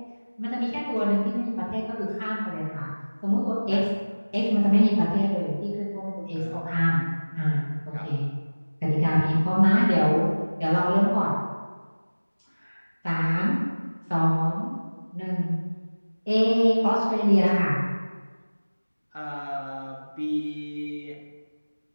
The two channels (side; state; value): both; inverted; correlation -1.00